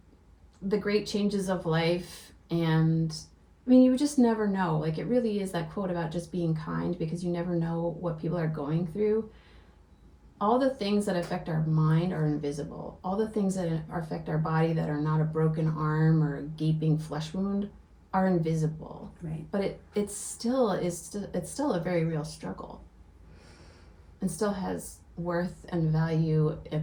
the great changes of life, and I mean, you just never know. Like, it really is that quote about just being kind, because you never know what people are going through. All the things that affect our mind are invisible. All the things that affect our body that are not a broken arm or a gaping flesh wound are invisible. Right. But it's still a very real struggle, and still has worth and value in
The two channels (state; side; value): identical; both; correlation 1.00